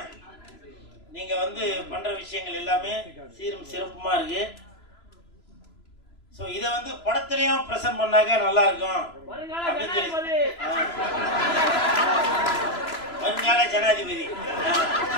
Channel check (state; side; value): late; right; 3.0 ms